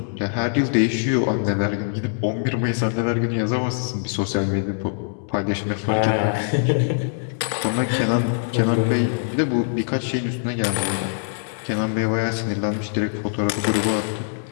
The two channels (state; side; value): silent; right; digital silence